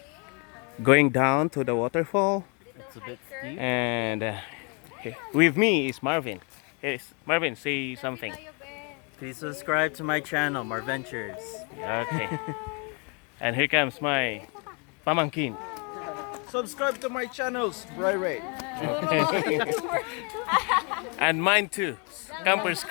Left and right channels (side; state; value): right; quieter; 34.6 dB